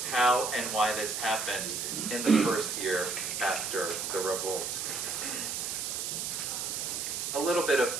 how and why this happened in the first year after the revolt. A little bit of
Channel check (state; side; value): noise; right; hiss, 3 dB below the sound